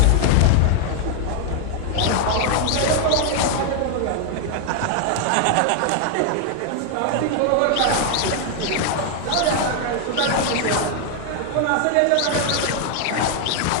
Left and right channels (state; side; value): different; both; correlation 0.00